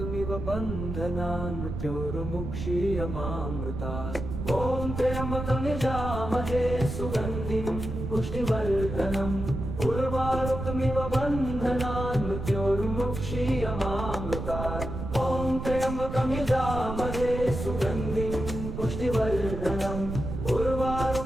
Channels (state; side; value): noise; right; rumble, 6 dB below the sound